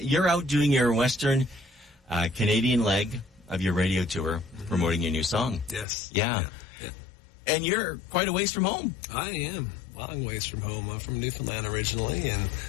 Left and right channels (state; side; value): drops out; right; at 5.9 s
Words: You're out doing your Western Canadian leg of your radio tour, promoting your new song. Yes. Yeah. And you're quite a ways from home. I am. Long ways from home. I'm from Newfoundland originally, and